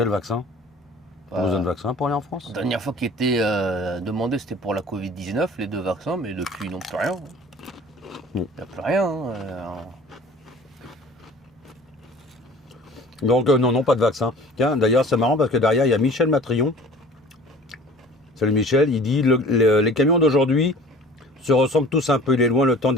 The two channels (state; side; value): normal; both; correlation 0.46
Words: vaccin? Tu as besoin de vaccin pour aller en France? La dernière fois qui était demandé, c'était pour la Covid-19, les 2 vaccins, mais depuis, non, plus rien. Il n'y a plus rien. Donc, non, pas de vaccin. Tiens, d'ailleurs, c'est marrant parce que derrière, il y a Michel Matrion. Salut Michel, il dit les camions d'aujourd'hui se ressemblent tous un peu. Il est loin le temps